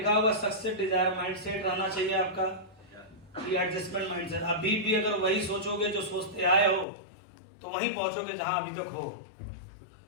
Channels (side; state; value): right; drops out; at 6.9 s